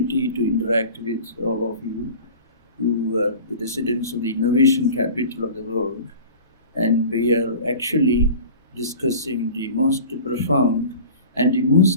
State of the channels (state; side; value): inverted; both; correlation -0.40